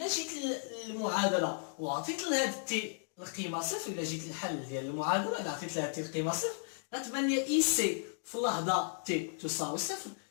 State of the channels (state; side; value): silent; right; digital silence